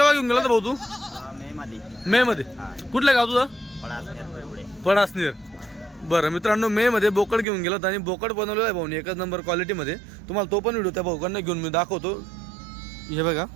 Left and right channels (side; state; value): left; drops out; at 7.5 s